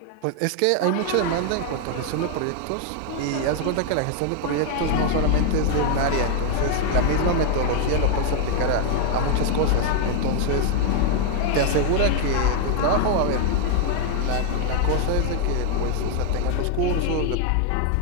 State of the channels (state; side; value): different; both; correlation 0.00